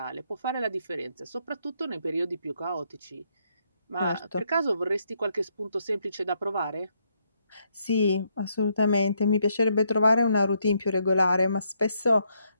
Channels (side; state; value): both; inverted; correlation -0.75